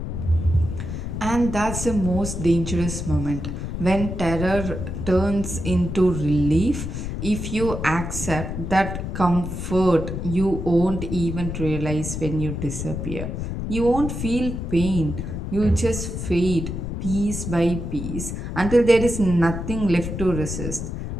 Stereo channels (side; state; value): left; noise; rumble, 5 dB below the sound